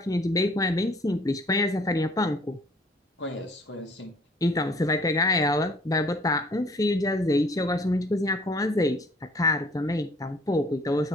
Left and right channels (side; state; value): both; normal; correlation 0.56